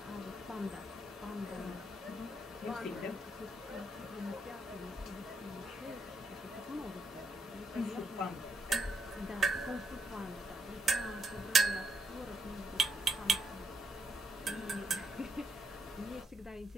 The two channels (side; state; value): both; normal; correlation 0.79